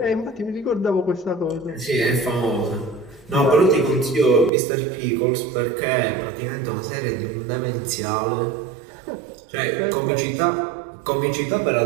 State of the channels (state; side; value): drops out; left; at 4.5 s